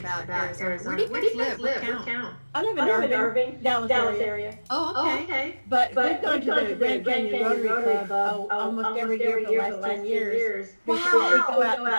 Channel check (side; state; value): both; inverted; correlation -1.00